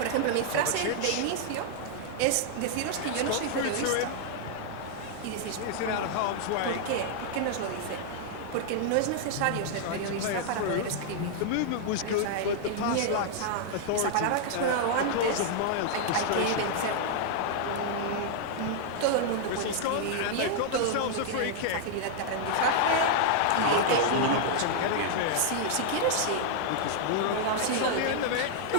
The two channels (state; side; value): different; both; correlation -0.01